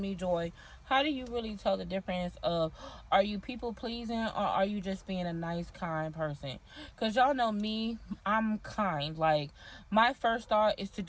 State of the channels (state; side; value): identical; both; correlation 1.00